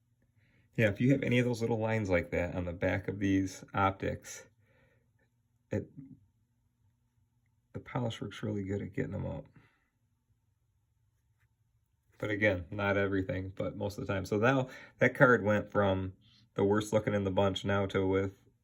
Yeah, if you have any of those little lines like that on the back of these optics, the polish works really good at getting them out. But again, not everything, but most of the time. So now that card went from the worst looking in the bunch now to with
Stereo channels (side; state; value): both; identical; correlation 1.00